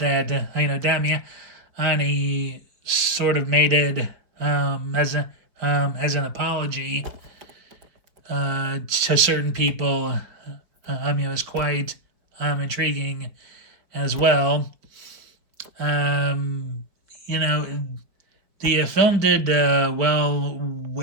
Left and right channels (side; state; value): left; late; 4.6 ms